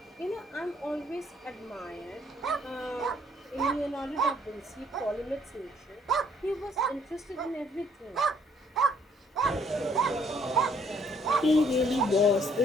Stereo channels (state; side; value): normal; both; correlation 0.64